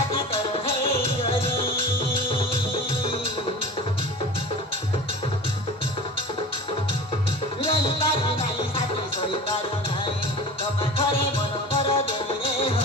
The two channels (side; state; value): both; normal; correlation 0.35